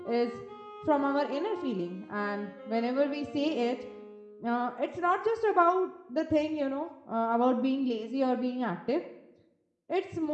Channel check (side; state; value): both; identical; correlation 1.00